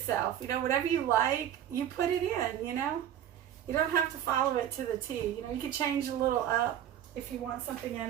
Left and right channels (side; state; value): left; quieter; 10.6 dB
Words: You know, whatever you like, you put it in, you know. You don't have to follow it to the T. You know, you could change a little up if you want something in